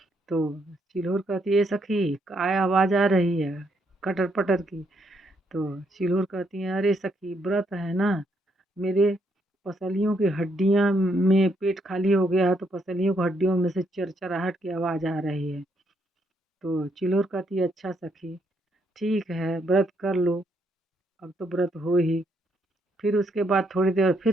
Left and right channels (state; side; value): normal; both; correlation 0.74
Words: तो चिल्होर कहती है, सखी काय आवाज़ आ रही है कटर पटर की। तो चिल्होर कहती है, अरे सखी व्रत है ना, मेरे पसलियों की हड्डियाँ में पेट खाली हो गया है, तो पसलियों की हड्डियों में से चरचराहट की आवाज़ आ रही है। तो चिल्होर कहती है, अच्छा सखी ठीक है, व्रत कर लो, अब तो व्रत हो ही। फिर उसके बाद थोड़ी देर